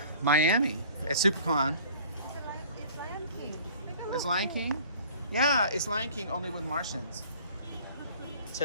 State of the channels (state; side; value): inverted; both; correlation -0.49